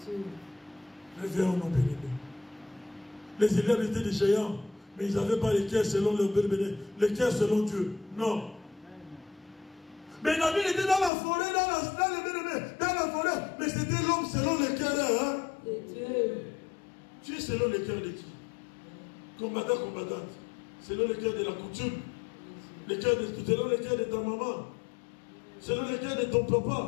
Réveillons nos bénédicts. Les élèves étaient des géants, mais ils n'avaient pas les cœurs selon leur bénédicts, les cœurs selon Dieu. Non. Mais David était dans la forêt, dans la forêt, mais c'était l'homme selon le cœur. Hein? Tu es selon le cœur de qui? Combattant, combattante. Selon le cœur de la coutume. Selon le cœur de ta maman. Selon le cœur de ton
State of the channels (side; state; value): right; drops out; at 11.1 s